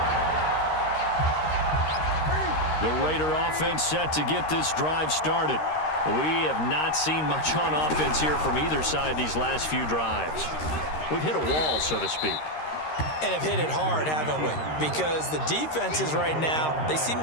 The Raider offense set to get this drive started. We have not seen much on offense here from either side these last few drives. We've hit a wall, so to speak. And have hit it hard, haven't we? Because the defenses right now, they seem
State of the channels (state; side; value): late; right; 13 ms